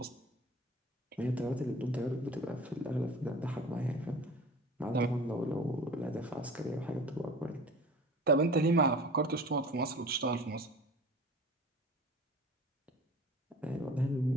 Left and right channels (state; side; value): normal; both; correlation 0.41